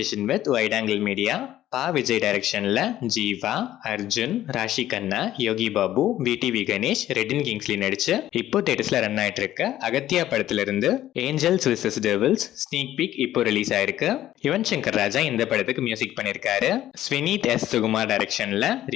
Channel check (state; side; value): quieter; right; 13.1 dB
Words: with wide angle media Pa Vijay டைரக்ஷன்ல Jiiva, Arjun, Raashi Khanna, Yogi Babu, VTV Ganesh, Redin Kingsley நடிச்சு இப்போ தேட்டர்ஸ்ல ரன் ஆயிட்டு இருக்க அகத்தியா படத்துல இருந்து angels versus devils sneak peek இப்போ ரிலீஸ் ஆயிருக்கு. யுவன் சங்கர் ராஜா இந்த படத்துக்கு மியூசிக் பண்ணிருக்காரு. ஸ்வினீத் எஸ் சுகுமார் டைரக்ஷன்ல